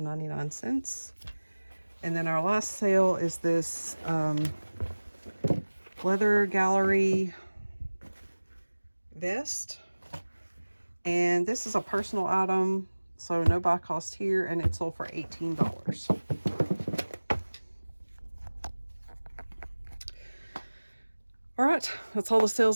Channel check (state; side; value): inverted; both; correlation -1.00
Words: And then our last sale is this leather gallery vest, and this is a personal item, so no buy cost here, and it sold for $18. All right, that's all the